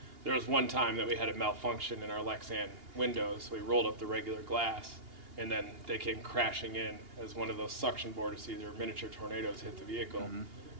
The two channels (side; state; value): left; late; 2.8 ms